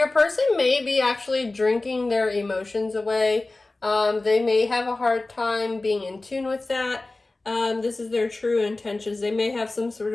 person may be actually drinking their emotions away. They may have a hard time being in tune with that. This is their true intentions. They may have some sort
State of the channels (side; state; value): right; quieter; 3.1 dB